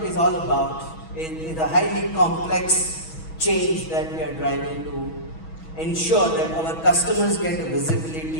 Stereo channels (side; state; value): right; late; 6.2 ms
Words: is all about is a highly complex change that we are driving to ensure that our customers get a